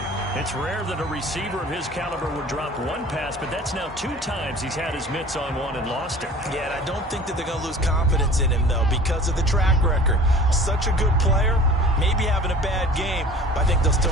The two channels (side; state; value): both; normal; correlation 0.45